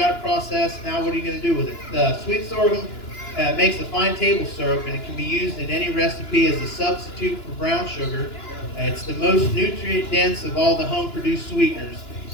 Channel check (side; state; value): right; late; 2.9 ms